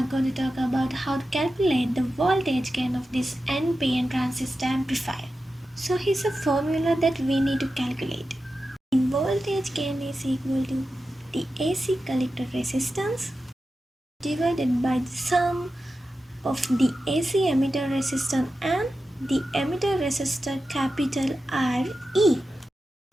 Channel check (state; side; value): normal; both; correlation 0.92